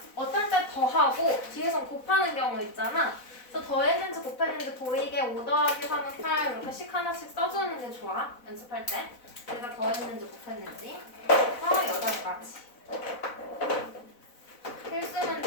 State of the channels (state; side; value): late; right; 4.0 ms